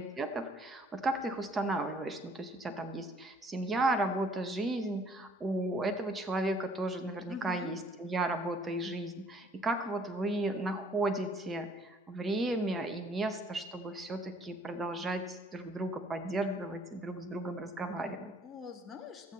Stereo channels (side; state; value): both; normal; correlation 0.60